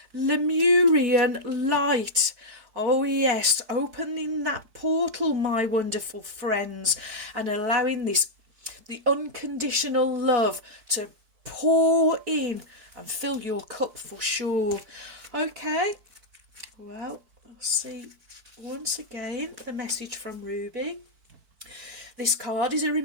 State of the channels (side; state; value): left; late; 4.5 ms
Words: Lemurian light. Oh yes, opening that portal, my wonderful friends, and allowing the unconditional love to pour in and fill your cup for sure. Okay, well, I'll see once again the message from Ruby. This card is a